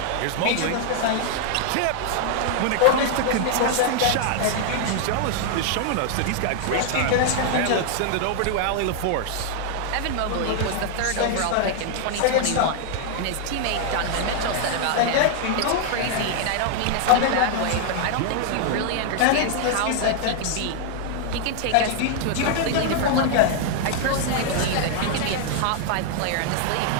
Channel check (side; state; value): both; different; correlation 0.00